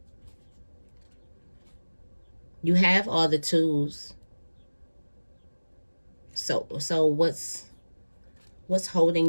You have all the tools. So what's holding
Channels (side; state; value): both; inverted; correlation -1.00